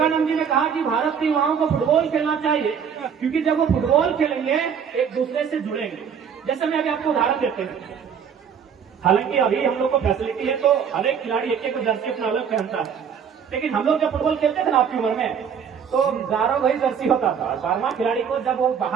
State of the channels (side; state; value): left; quieter; 7.4 dB